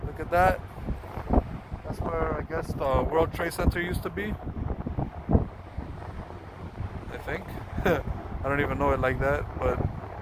at that. That's where I guess the World Trade Center used to be, I think. I don't even know it like that, but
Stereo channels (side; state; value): both; identical; correlation 1.00